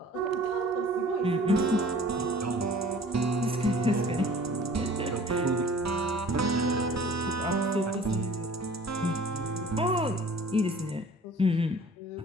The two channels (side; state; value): both; normal; correlation 0.48